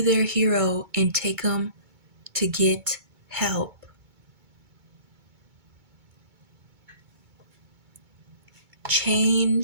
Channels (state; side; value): late; left; 2.2 ms